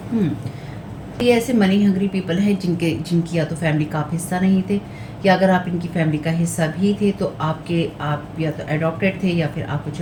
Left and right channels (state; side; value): identical; both; correlation 1.00